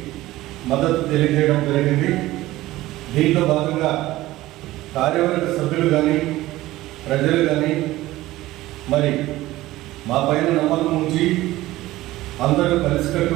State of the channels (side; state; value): left; quieter; 16.9 dB